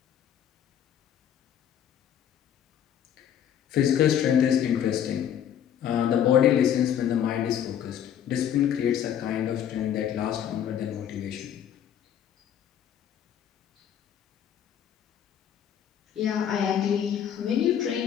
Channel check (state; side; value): quieter; right; 9.5 dB